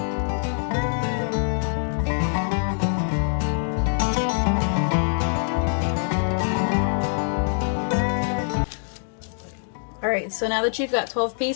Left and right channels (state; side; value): silent; right; digital silence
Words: Alright, so now that you've got 12